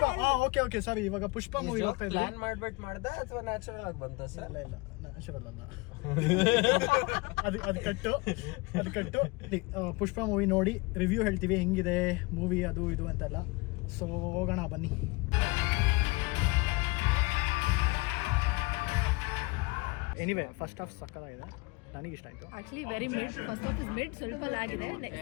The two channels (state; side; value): quieter; right; 25.0 dB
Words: ಓಕೆ ಸಾರಿ, ಇವಾಗ ಪುಷ್ಪ ಮೂವಿಗೆ ಹೋಗ್ತಾ ಇದೀವಿ. ಪ್ಲಾನ್ ಮಾಡ್ಬಿಟ್ಟು ಮಾಡ್ದ ಅಥವಾ ನ್ಯಾಚುರಲ್ ಆಗಿ ಬಂತ ಸರ್? ಇಲ್ಲ ನ್ಯಾಚುರಲ್ ಅಲ್ಲ, ಅದು ಕಟ್ಟು. ಪುಷ್ಪ ಮೂವಿ ನೋಡಿ ರಿವ್ಯೂ ಹೇಳ್ತೀವಿ, ಹೆಂಗಿದೆ ಮೂವಿ ಅದು ಇದು ಅಂತೆಲ್ಲ. ಸೊ ಹೋಗೋಣ ಬನ್ನಿ. ಎನಿವೆ ಫಸ್ಟ್ ಹಾಫ್ ಸಕ್ಕತ್ತಾಗಿದೆ, ನನಗೆ ಇಷ್ಟ ಆಯ್ತು. Actually very mid, first half is mid, ಸ್ವಲ್ಪ ಲ್ಯಾಗ್ ಇದೆ.